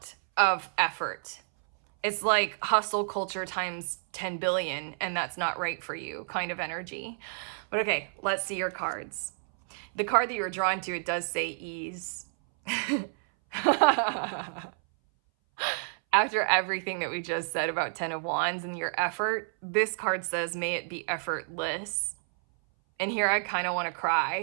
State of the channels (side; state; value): left; silent; 58 dB below the other